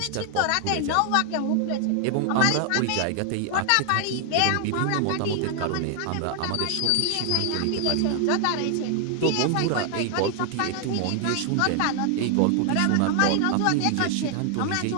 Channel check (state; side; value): different; both; correlation 0.00